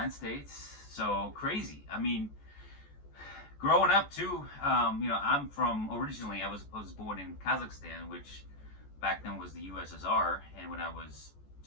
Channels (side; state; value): right; late; 14 ms